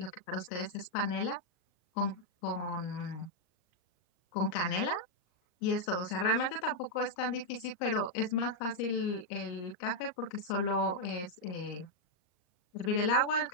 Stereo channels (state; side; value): late; right; 39 ms